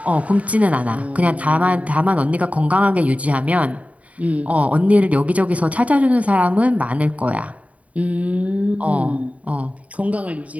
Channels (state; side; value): late; left; 0.068 ms